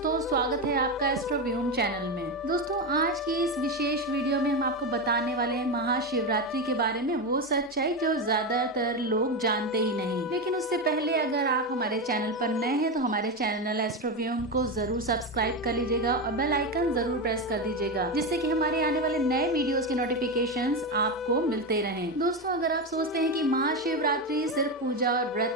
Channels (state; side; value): normal; both; correlation 0.14